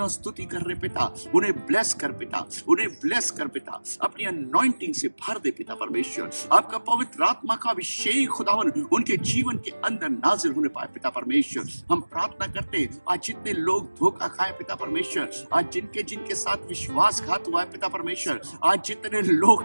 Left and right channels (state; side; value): inverted; both; correlation -1.00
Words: स्तुति कर रहे पिता, उन्हें ब्लेस कर पिता, उन्हें ब्लेस कर पिता, अपनी अनॉइंटिंग से भर दे पिता परमेश्वर। आपका पवित्र आत्मा का अभिषेक खुदावन उनके जीवन के अंदर नाजिल होने पाए पिता परमेश्वर। हम प्रार्थना करते आज जितने लोग धोखा खाए पिता परमेश्वर, आज जिनके साथ विश्वासघात हुआ है पिता परमेश्वर, आज जितने